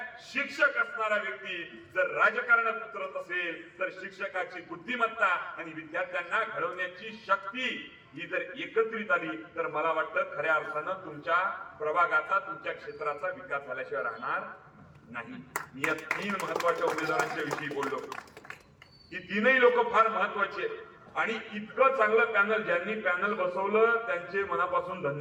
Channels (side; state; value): both; identical; correlation 1.00